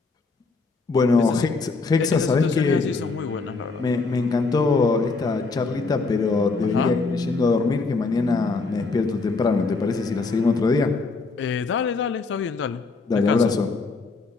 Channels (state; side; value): quieter; right; 3.9 dB